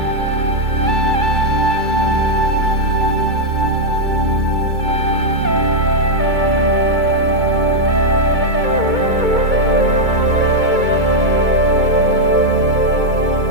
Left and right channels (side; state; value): left; late; 2.2 ms